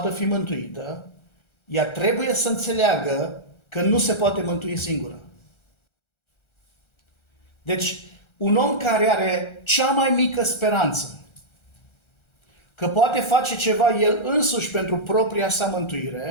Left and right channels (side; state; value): right; late; 1.3 ms